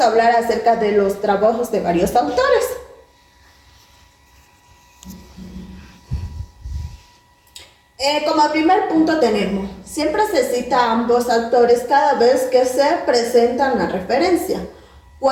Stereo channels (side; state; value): both; identical; correlation 1.00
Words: hablar acerca de los trabajos de varios autores. Como primer punto tenemos, siempre se cita a ambos autores cada vez que se presentan la referencia.